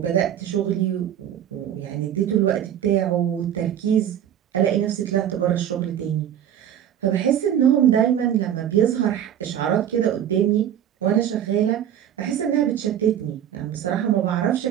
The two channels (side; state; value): left; quieter; 10.1 dB